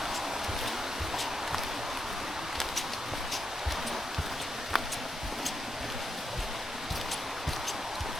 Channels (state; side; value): normal; both; correlation 0.83